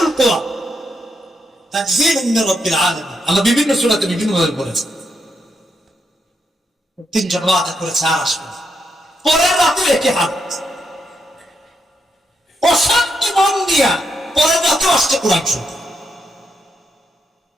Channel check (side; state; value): both; normal; correlation 0.81